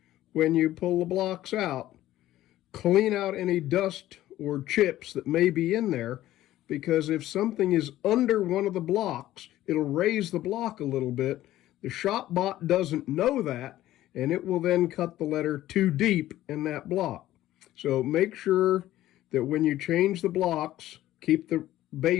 when you pull the blocks out, clean out any dust or chips that may be in there, because if something is under one of the blocks, it'll raise the block a little bit. The ShopBot doesn't know that, and it will then cut the letter too deep in that block. So make sure that when you change the blocks, keep the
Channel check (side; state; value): right; quieter; 14.4 dB